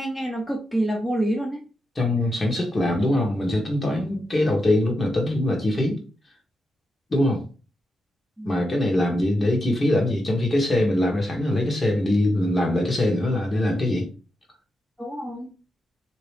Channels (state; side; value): normal; both; correlation 0.86